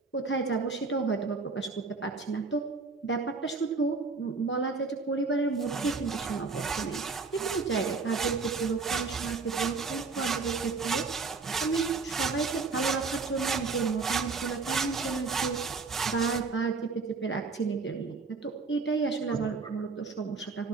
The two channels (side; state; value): left; quieter; 4.4 dB